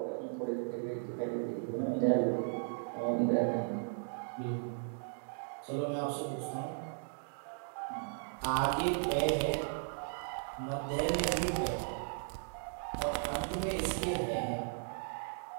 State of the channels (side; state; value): left; silent; digital silence